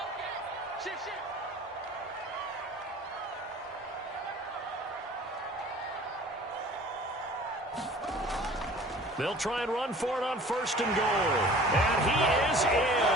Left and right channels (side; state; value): both; normal; correlation 0.47